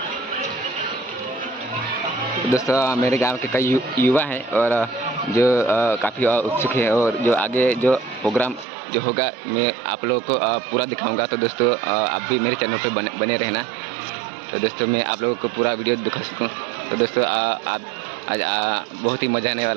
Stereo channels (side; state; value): left; drops out; at 8.7 s